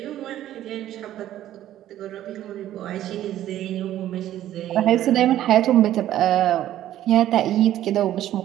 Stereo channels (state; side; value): quieter; left; 12.7 dB